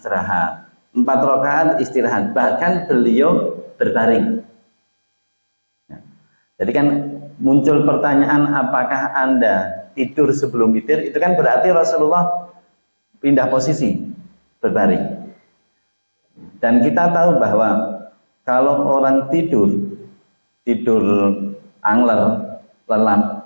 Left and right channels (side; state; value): both; inverted; correlation -1.00